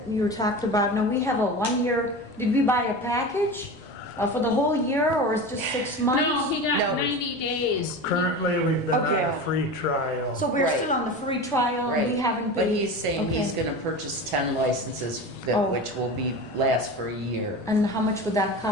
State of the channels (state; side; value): noise; left; rumble, 28 dB below the sound